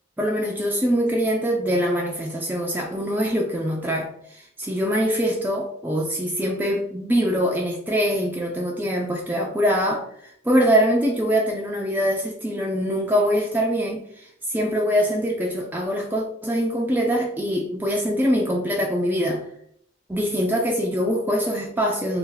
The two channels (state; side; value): normal; both; correlation 0.59